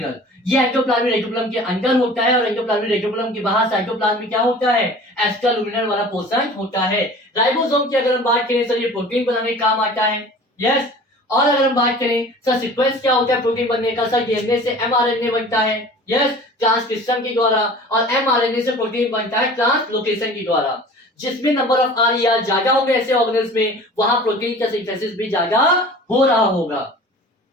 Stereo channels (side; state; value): both; normal; correlation 0.43